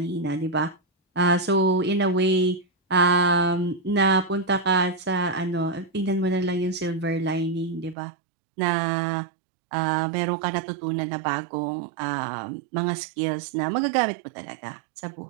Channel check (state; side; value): drops out; left; at 8.0 s